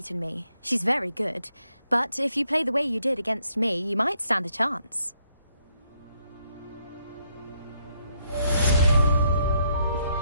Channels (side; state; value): both; inverted; correlation -0.74